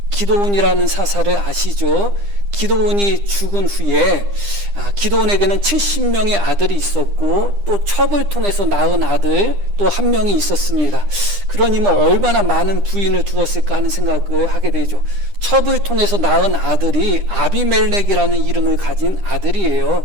기드온이라는 사사를 아시죠? 기드온이 죽은 후에 기드온에게는 70명의 아들이 있었고 또 첩을 통해서 낳은 아들 또 한 명이 있었습니다. 그러니 얼마나 많은 부인을 두었을까 하는 생각을 하게 되죠. 첩을 통해서 낳은 아들이 아비멜렉이라는 이름을 가진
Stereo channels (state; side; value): late; left; 9.9 ms